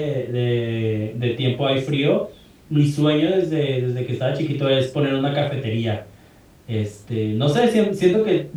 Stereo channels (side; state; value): both; identical; correlation 1.00